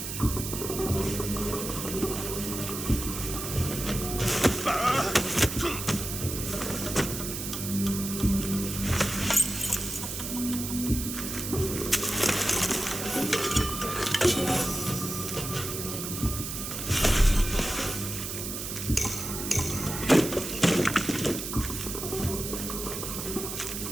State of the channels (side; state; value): right; noise; hiss, 5 dB below the sound